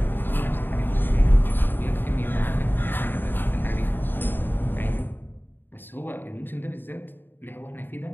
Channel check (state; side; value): late; right; 0.095 ms